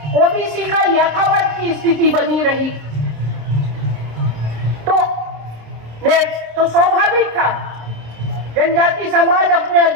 ओबीसी का यथावत की स्थिति बनी रही। तो स्वाभाविक था जनजाति समाज अपने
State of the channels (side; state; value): left; late; 26 ms